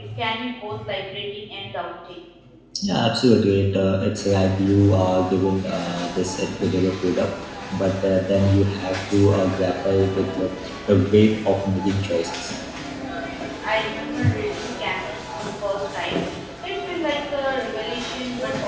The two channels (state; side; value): identical; both; correlation 1.00